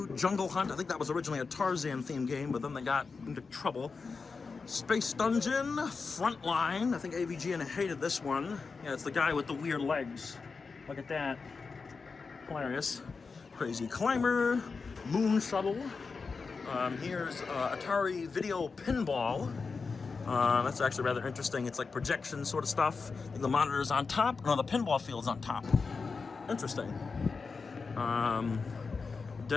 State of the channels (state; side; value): quieter; right; 4.7 dB